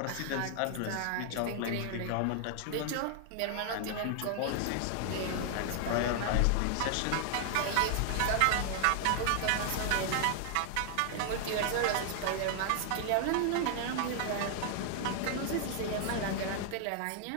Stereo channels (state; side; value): different; both; correlation 0.00